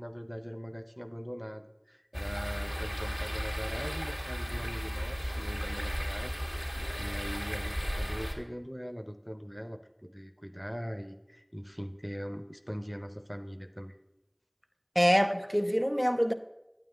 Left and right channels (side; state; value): both; identical; correlation 1.00